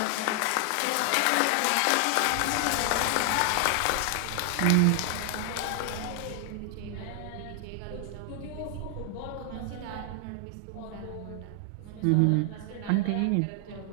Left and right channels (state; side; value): different; both; correlation 0.00